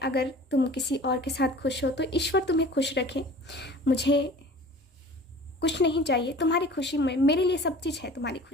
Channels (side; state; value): both; normal; correlation 0.43